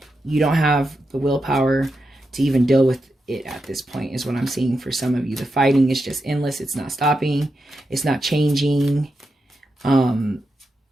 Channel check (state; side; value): normal; both; correlation 0.87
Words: You don't have the willpower to even deal with it at this point, is what I'm seeing for some of you. The fighting is just endless. It's not stopping. It's not changing.